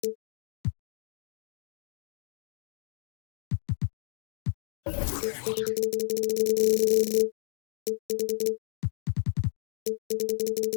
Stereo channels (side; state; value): right; silent; 57 dB below the other